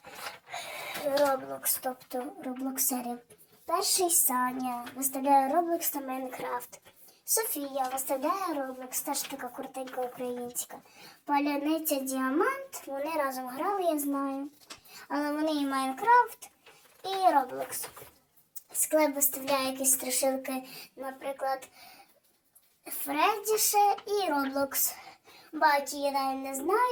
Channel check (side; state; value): both; identical; correlation 1.00